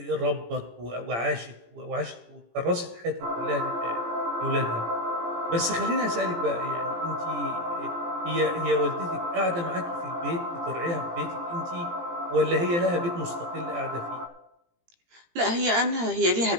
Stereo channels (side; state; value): left; late; 17 ms